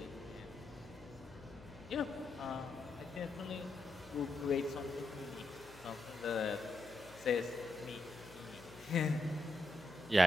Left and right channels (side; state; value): left; noise; hum, 19 dB below the sound